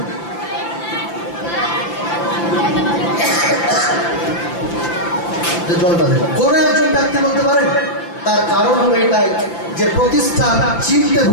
কোন একজন ব্যক্তি বলতে পারেন? তার কারণ হলো এটাই যে প্রতিষ্ঠান চিনতে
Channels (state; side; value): late; right; 5.9 ms